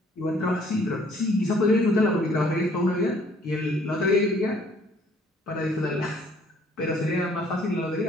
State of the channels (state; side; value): normal; both; correlation 0.60